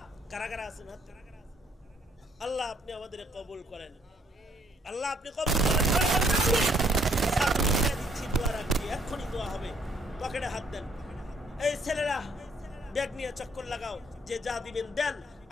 কারা কারা আছেন? আল্লাহ আপনি আমাদের কবুল করেন, আল্লাহ আপনি কবুল করেন। দোয়া রাখবি, এক্ষুনি দোয়া হবে, পকেটে হাত দেন। এই ছেলেরা ব্যাগ নিয়ে চক্কর লাগাও, যে যা দিবেন দেন,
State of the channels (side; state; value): both; normal; correlation 0.67